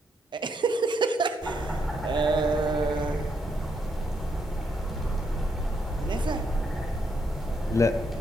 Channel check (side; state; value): both; normal; correlation 0.77